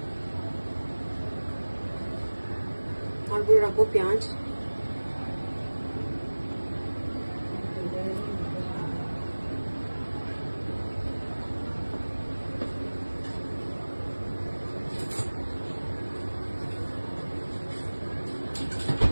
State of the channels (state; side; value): inverted; both; correlation -1.00